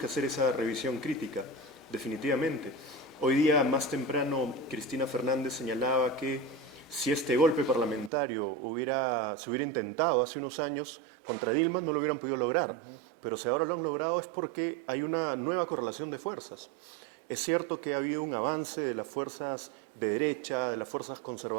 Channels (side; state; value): left; drops out; at 8.1 s